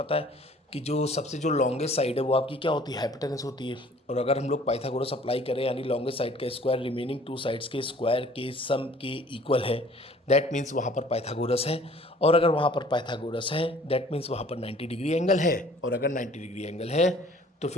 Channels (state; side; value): normal; both; correlation 0.53